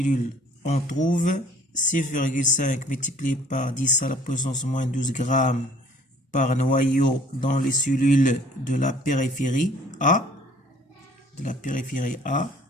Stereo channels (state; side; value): normal; both; correlation 0.55